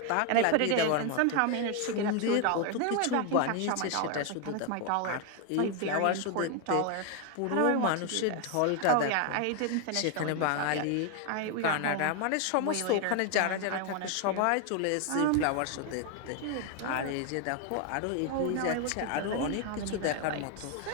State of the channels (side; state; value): both; different; correlation 0.01